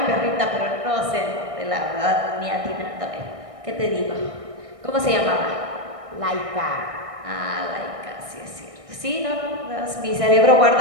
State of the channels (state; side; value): late; left; 1.6 ms